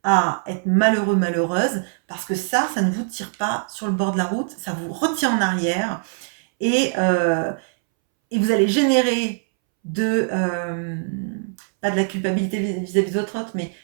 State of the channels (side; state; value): left; silent; 64 dB below the other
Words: à être malheureux, malheureuse, parce que ça ne vous tire pas sur le bord de la route, ça vous retient en arrière et, euh, et vous allez générer pas de la culpabilité vis-à-vis d'autres, mais